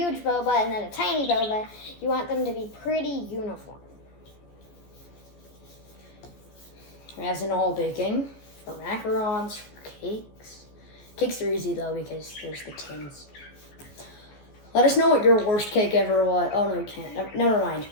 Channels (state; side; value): late; right; 14 ms